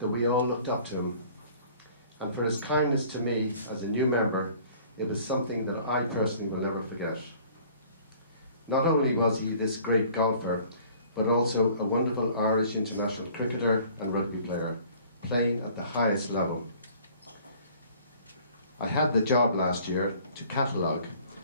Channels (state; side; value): inverted; both; correlation -0.52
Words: we all looked up to him. And for his kindness to me as a new member, it was something that I personally will never forget. Not only was he this great golfer, but also a wonderful Irish international cricketer and rugby player, playing at the highest level. I had the job last year to catalogue